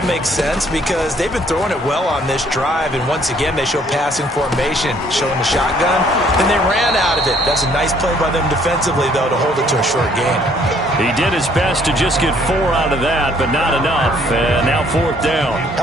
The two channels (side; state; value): both; normal; correlation 0.63